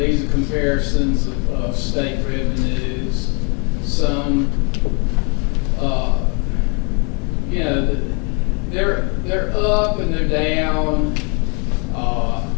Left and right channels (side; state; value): right; quieter; 35.1 dB